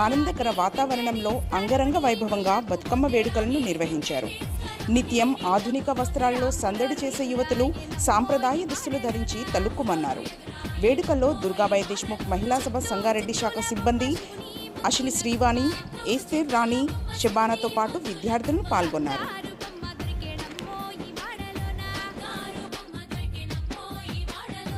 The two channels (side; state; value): both; identical; correlation 1.00